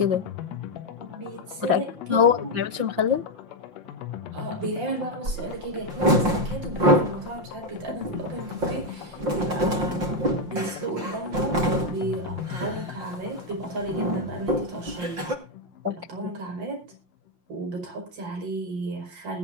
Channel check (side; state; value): left; late; 5.7 ms